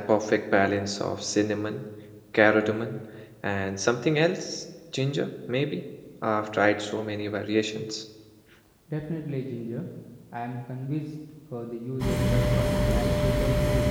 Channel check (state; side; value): identical; both; correlation 1.00